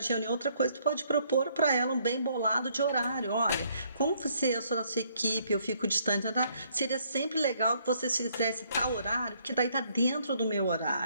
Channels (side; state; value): both; inverted; correlation -0.67